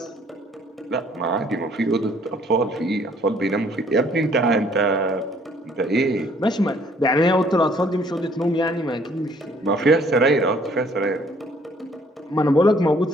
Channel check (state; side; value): normal; both; correlation 0.60